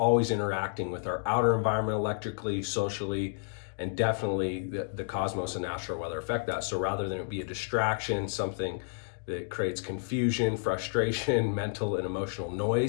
interacting with our outer environment electrically, socially, and definitely the cosmos and astral weather affect that. So rather than it be a distraction, something that creates confusion, frustration, mental and emotional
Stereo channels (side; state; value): right; silent; digital silence